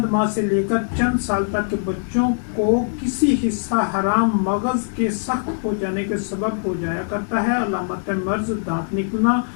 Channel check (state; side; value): silent; right; digital silence